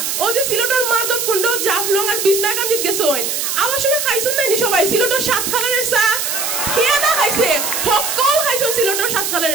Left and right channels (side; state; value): right; noise; hiss, 1 dB below the sound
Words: ও যে সিলেটের মাধবকুণ্ড জাফলং আর বিছনাকান্দিত গেছেন আমার সময় খাইছেন নাইনি সবাই সিলেটের 7 খালারের চা? খেয়ে না খাইছে সকল খাইছেন সিলেটের 7